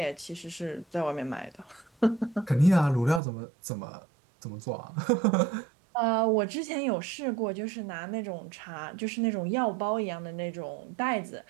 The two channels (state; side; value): drops out; left; at 3.2 s